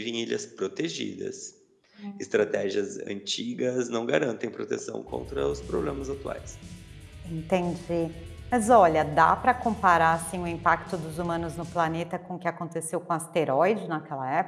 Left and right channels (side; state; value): both; identical; correlation 1.00